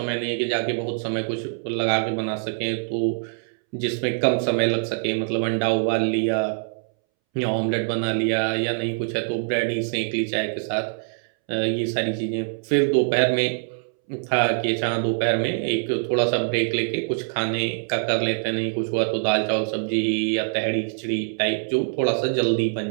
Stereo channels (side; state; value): left; silent; 63 dB below the other